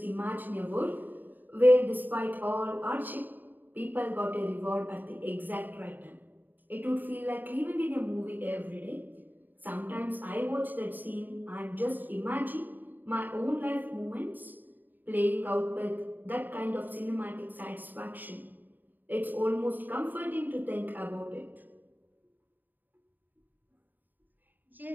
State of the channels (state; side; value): late; left; 0.088 ms